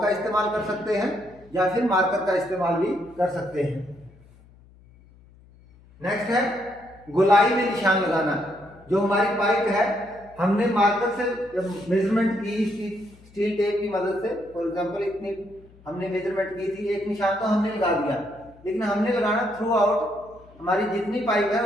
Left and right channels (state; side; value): noise; left; hum, 26 dB below the sound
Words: का इस्तेमाल कर सकते हैं या फिर मार्कर का इस्तेमाल भी कर सकते हैं। नेक्स्ट है गोलाई में निशान लगाना। जो हमारी पाइप है हमने मार्कर से जब मेजरमेंट की स्टील टेप की मदद से, फॉर एग्जांपल इतनी हमने मेजरमेंट की थी, एक निशान तो हमने लगा दिया, लेकिन हमने लगाना थ्रू आउट हमारी जितनी पाइप है